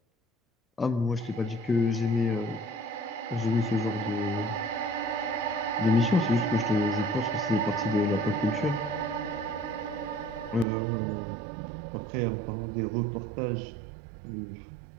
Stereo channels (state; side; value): drops out; left; at 10.7 s